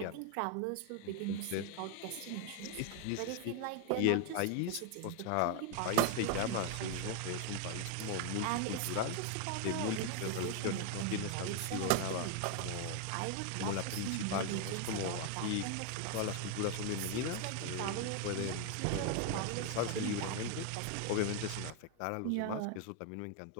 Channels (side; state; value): both; different; correlation 0.01